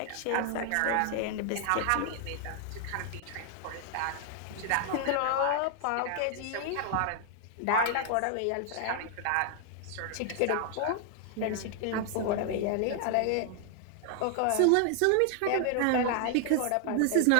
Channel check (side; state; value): both; different; correlation 0.00